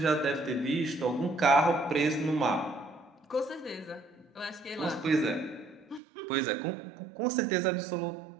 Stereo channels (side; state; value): left; drops out; at 6.0 s